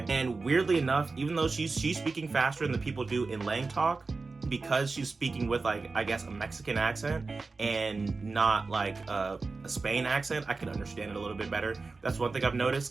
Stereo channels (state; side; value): quieter; left; 4.0 dB